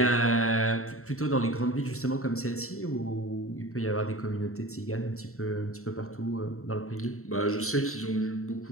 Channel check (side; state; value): right; late; 0.63 ms